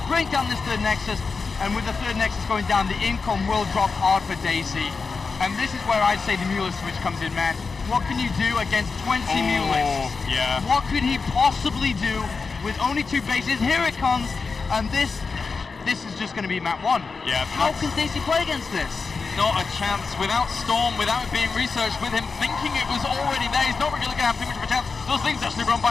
break down this third Nexus. And with the third Nexus going down, the income will drop hard for Daisy. And this is where I'd say the Mulist switch comes in, man. What can you do against 20 Mulists? Yeah. What could he possibly do with only 2 bases? Here it comes, and this is just going to be map 1. Yeah. How can Daisy play against this? Not a chance. Without Storm, without it being researched, with him thinking it was already there, he's not really going to have too much of a chance. Those things actually run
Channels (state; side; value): quieter; right; 4.7 dB